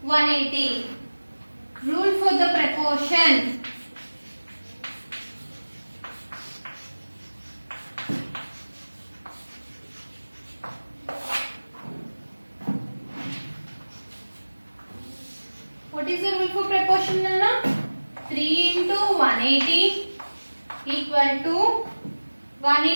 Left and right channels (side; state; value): both; inverted; correlation -1.00